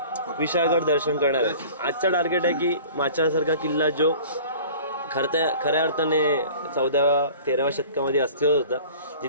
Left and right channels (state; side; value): inverted; both; correlation -0.44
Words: विशाळगड दर्शन करणार आहे. आजचा टार्गेट आहे की माचाळसारखा किल्ला जो खऱ्या अर्थाने 14व्या-13व्या शतकामध्ये अस्तित्वात होता,